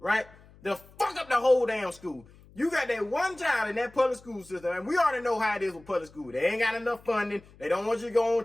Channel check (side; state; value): left; noise; hum, 25 dB below the sound